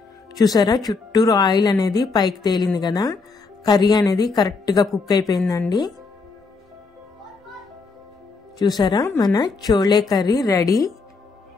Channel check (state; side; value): quieter; right; 4.3 dB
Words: చూసారా, చుట్టూరు ఆయిల్ అనేది పైకి తేలింది కదా, కర్రీ అనేది కరెక్ట్గా కుక్ అయిపోయిందండి. చూసారా, మన చోలే కర్రీ రెడీ.